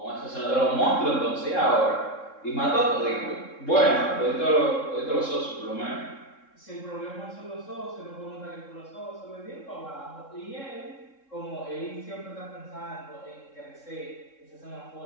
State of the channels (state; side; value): late; right; 3.7 ms